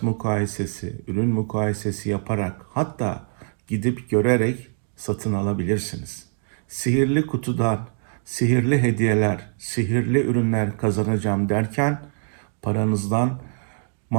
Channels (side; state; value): left; silent; digital silence